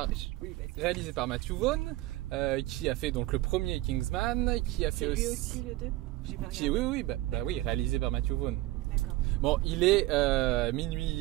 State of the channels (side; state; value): left; quieter; 18.1 dB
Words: par Matthew Vaughn, qui a fait donc le premier Kingsman, qui a fait aussi le 2. Oui, réalisé par Matthew Vaughn. D'accord. Bon, il est